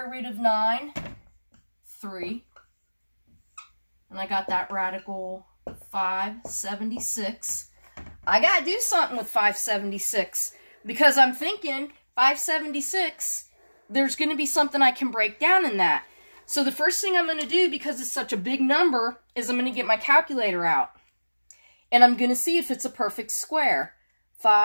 root of 9? 3. And I got that radical 576. I got to do something with 576 because I'm thinking 576, there's going to be something I can break down in that. So the first thing I'm going to do, because it's such a big number, is I'm going to get my calculator out. And I'm going to see if it's a perfect square.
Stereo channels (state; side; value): inverted; both; correlation -1.00